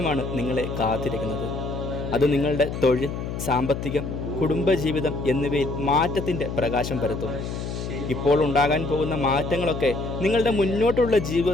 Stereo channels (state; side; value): noise; left; hum, 5 dB below the sound